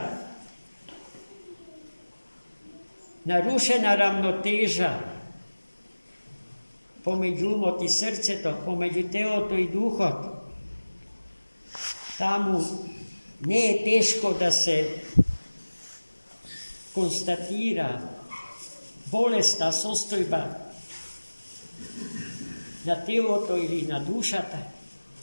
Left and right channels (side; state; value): both; inverted; correlation -1.00